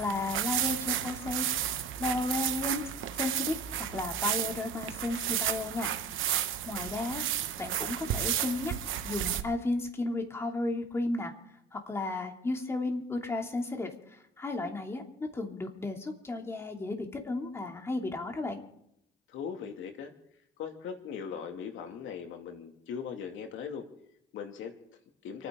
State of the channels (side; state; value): both; normal; correlation 0.46